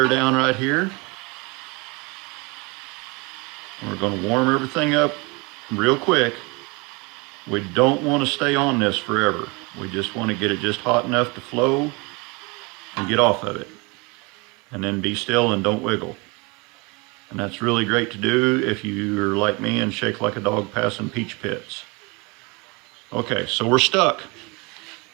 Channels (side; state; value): left; quieter; 28.1 dB